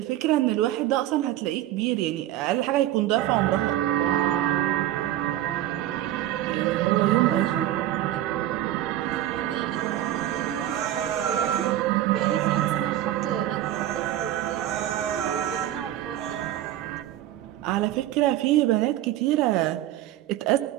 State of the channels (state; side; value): quieter; left; 13.3 dB